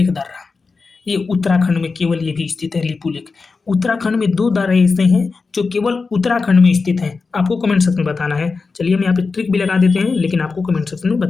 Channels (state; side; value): quieter; right; 4.4 dB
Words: दर्रा। ये उत्तराखंड में केवल ये भी स्थित है, लिपू लेक। उत्तराखंड में 2 दर्रे ऐसे हैं जो केवल उत्तराखंड में स्थित हैं। आपको कमेंट सेक्शन में बताना है। चलिए हम यहाँ पे ट्रिक भी लगा देते हैं, लेकिन आपको कमेंट सेक्शन में